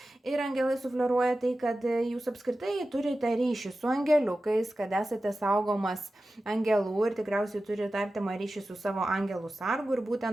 Ir angelai sufleruoja tai, kad jūs apskritai turite ryšį su angeliukais, kad esate saugomas angelų ir tikriausiai turite artimą ryšį su savo angelų sargu. Ir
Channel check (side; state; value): both; normal; correlation 0.94